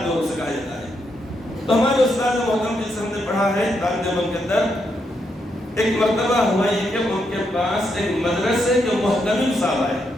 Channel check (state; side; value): normal; both; correlation 0.80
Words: نور سے کہا جاتا ہے۔ تو ہمارے استاد محترم جن سے ہم نے پڑھا ہے دیوبند کے اندر، ایک مرتبہ ہوا یہ کہ ان کے پاس ایک مدرسے کے محتمم صاحب آئے،